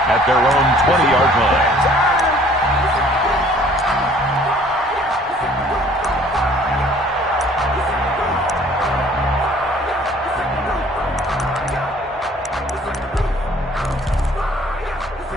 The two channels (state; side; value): normal; both; correlation 0.55